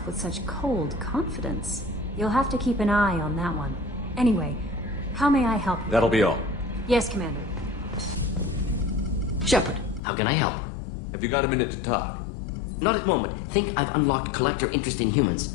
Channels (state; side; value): drops out; right; at 10.0 s